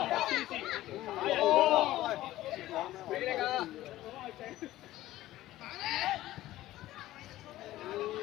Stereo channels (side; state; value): right; quieter; 15.4 dB